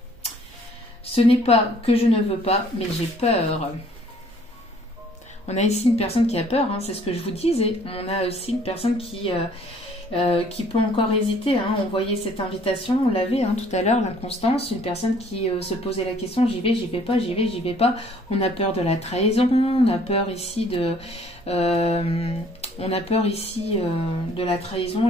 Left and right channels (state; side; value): normal; both; correlation 0.58